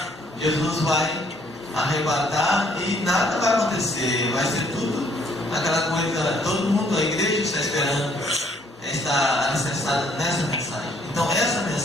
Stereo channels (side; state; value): both; normal; correlation 0.64